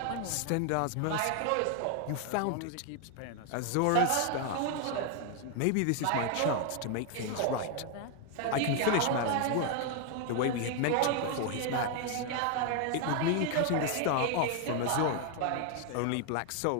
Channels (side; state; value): both; different; correlation 0.00